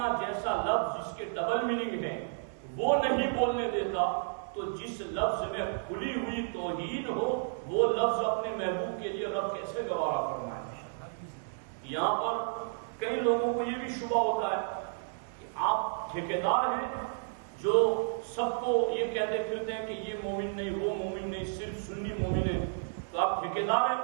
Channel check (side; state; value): left; silent; digital silence